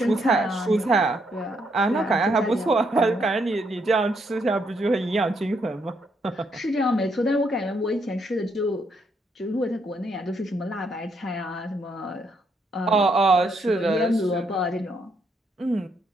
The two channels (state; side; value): normal; both; correlation 0.75